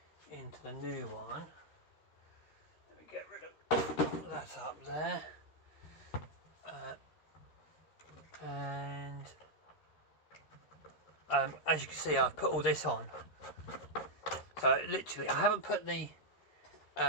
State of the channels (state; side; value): late; right; 13 ms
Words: into the new one. Let me get rid of that up there. And as you can see, I've put all this on. So literally, I haven't put the